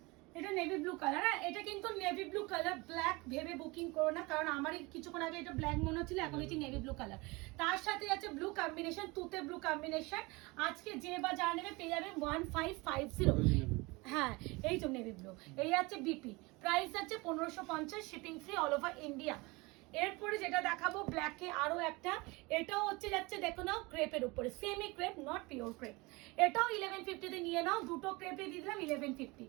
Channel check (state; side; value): quieter; left; 24.6 dB